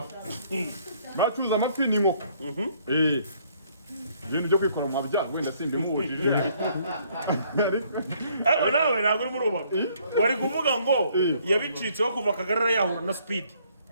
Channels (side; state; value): both; inverted; correlation -0.64